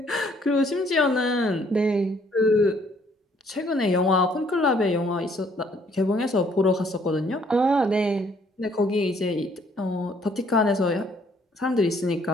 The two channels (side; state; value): both; normal; correlation 0.64